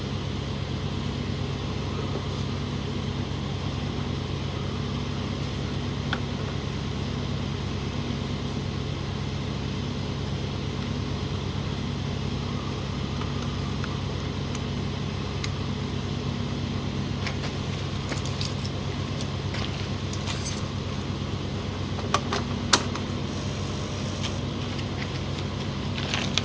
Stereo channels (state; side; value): identical; both; correlation 1.00